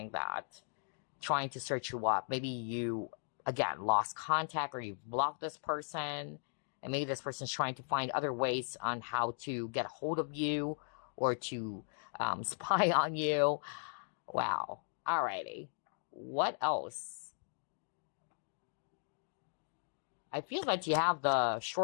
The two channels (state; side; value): silent; right; digital silence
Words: that, trying to search you up. Maybe you, again, lost contact or you've blocked this person. And maybe this person's trying to find other ways on how to get a hold of you or to spy on you. Wow. Alrighty. What else? I feel that you have the